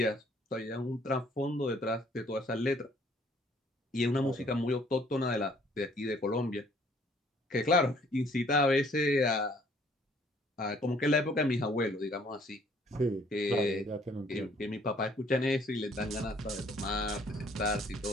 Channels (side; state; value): both; normal; correlation 0.60